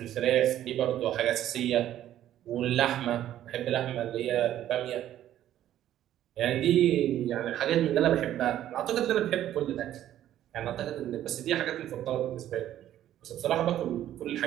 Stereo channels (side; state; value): left; quieter; 12.1 dB